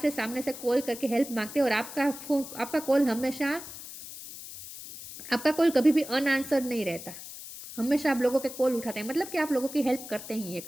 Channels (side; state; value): left; noise; hiss, 12 dB below the sound